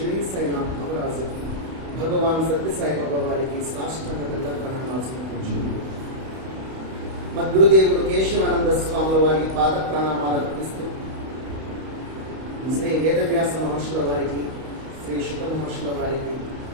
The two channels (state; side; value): late; left; 31 ms